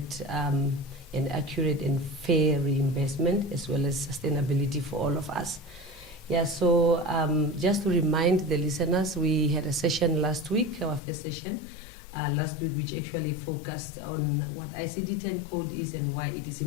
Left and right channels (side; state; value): right; drops out; at 11.0 s